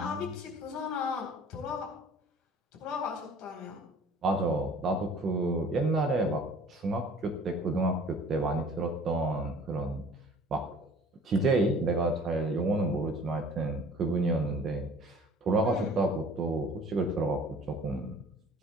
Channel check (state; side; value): normal; both; correlation 0.49